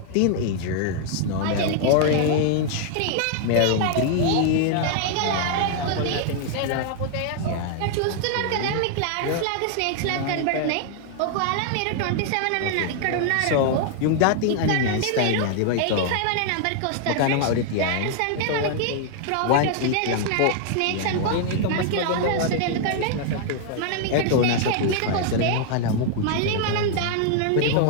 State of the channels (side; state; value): both; different; correlation 0.00